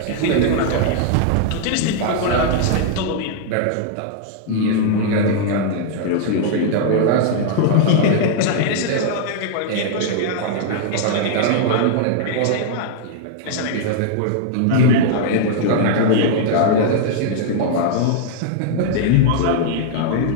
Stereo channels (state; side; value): different; both; correlation -0.01